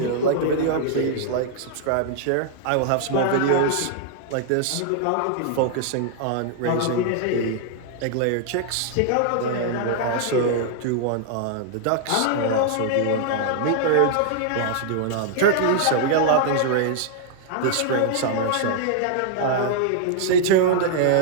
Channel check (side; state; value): both; different; correlation -0.01